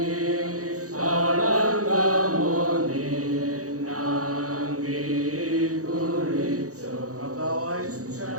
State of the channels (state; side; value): late; left; 0.66 ms